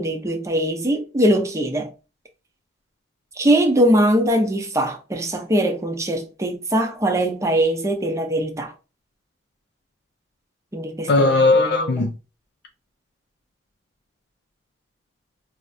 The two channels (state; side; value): normal; both; correlation 0.52